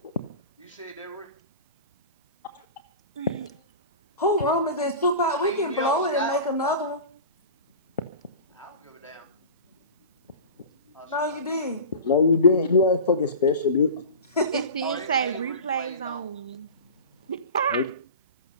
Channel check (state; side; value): inverted; both; correlation -0.33